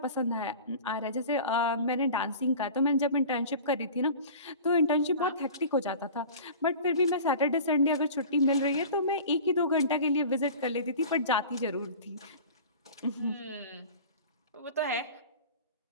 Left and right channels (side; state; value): both; inverted; correlation -0.39